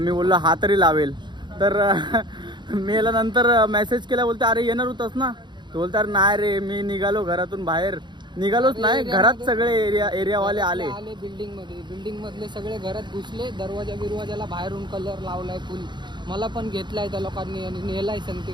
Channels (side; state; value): left; late; 0.22 ms